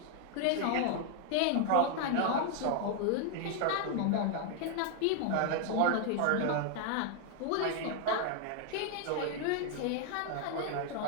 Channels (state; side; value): different; both; correlation 0.00